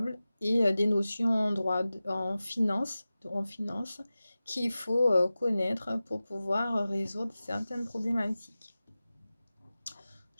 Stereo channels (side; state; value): both; inverted; correlation -0.96